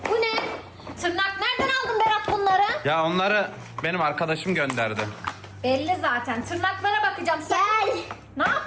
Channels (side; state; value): both; identical; correlation 1.00